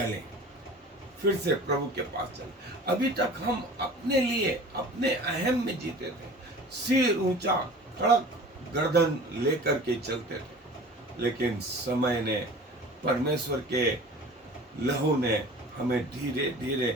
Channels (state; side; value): normal; both; correlation 0.42